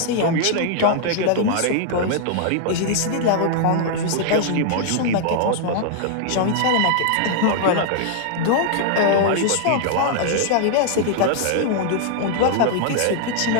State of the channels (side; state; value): both; different; correlation -0.01